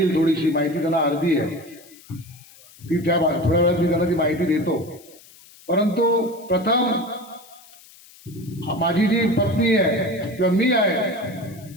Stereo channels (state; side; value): noise; left; hiss, 23 dB below the sound